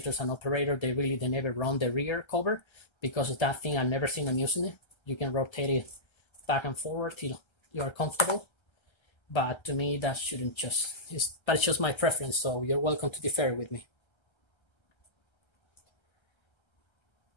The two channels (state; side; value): late; right; 1.3 ms